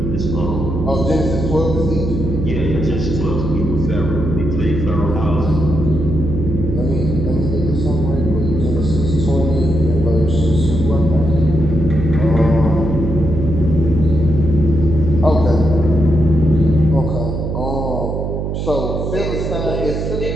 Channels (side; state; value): right; noise; hum, 3 dB below the sound